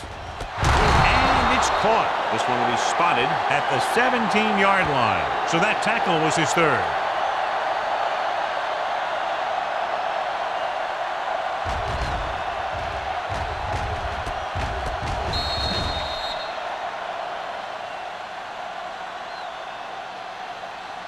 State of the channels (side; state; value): both; identical; correlation 1.00